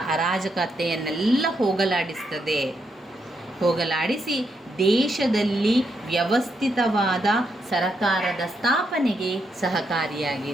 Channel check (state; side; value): normal; both; correlation 0.80